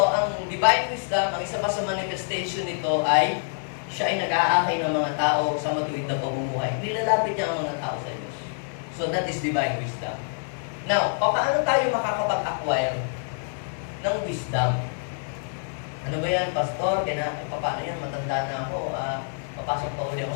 ang divine wisdom, ang isa pa sa manifestation nito ay siya ay nag-aakay ng mga tao sa matuwid na pamumuhay. Nilalapit niya ang mga tao sa Diyos. So, that is divine wisdom. Now, paano tayo makakapag-acquire ng wisdom? Ano ba yan, Pastor? Paano yan? Matanda na ako. Papasok pa uli ako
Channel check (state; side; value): silent; right; 61 dB below the other